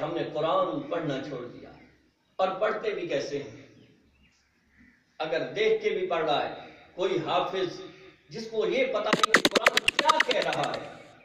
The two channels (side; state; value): both; identical; correlation 1.00